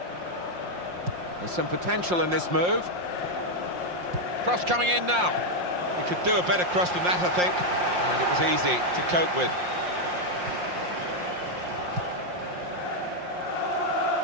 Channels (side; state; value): left; late; 5.6 ms